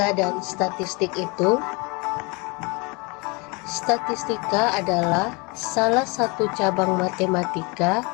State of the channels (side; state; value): right; quieter; 28.6 dB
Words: dan statistik itu? Statistika adalah salah satu cabang matematika